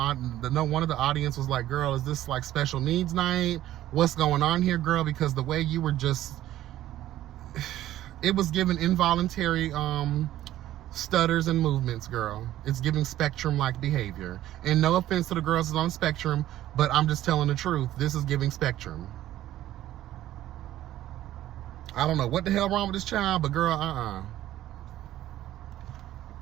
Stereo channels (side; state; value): left; quieter; 13.6 dB